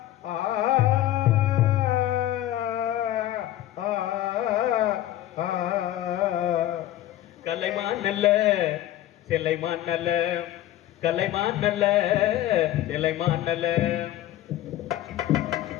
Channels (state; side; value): quieter; right; 13.6 dB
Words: சிலைமான் நல்ல கலைமான் நல்ல சிலைமான் நல்ல